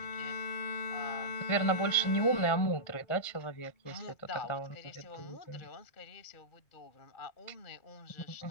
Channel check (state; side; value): late; right; 1.4 ms